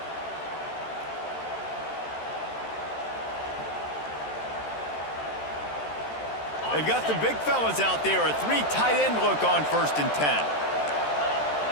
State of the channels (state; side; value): late; right; 13 ms